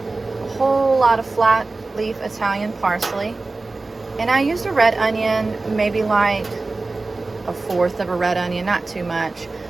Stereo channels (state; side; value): quieter; left; 3.4 dB